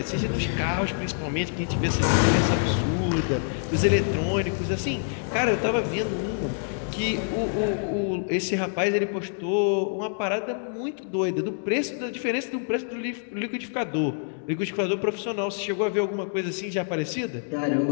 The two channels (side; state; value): right; silent; digital silence